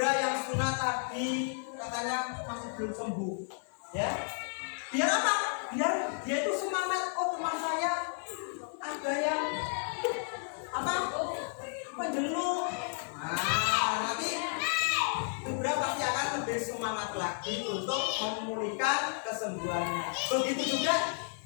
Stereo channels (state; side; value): silent; right; 56 dB below the other